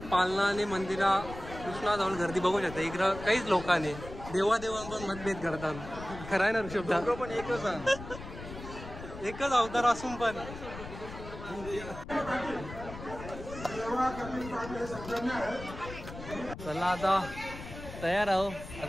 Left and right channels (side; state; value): left; noise; rumble, 12 dB below the sound